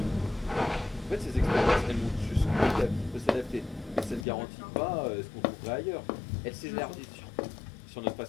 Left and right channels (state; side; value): drops out; right; at 4.2 s